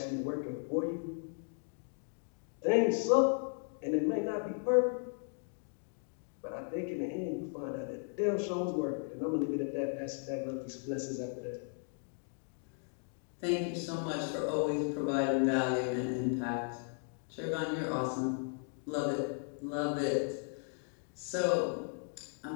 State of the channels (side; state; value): right; silent; 54 dB below the other